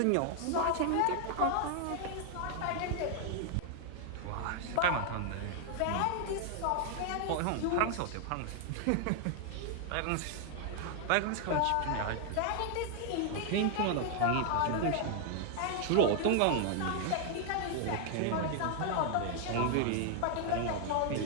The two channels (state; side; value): different; both; correlation 0.00